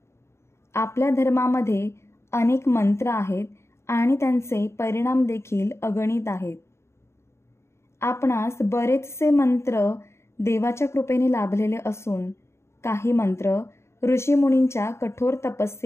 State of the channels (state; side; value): late; right; 0.13 ms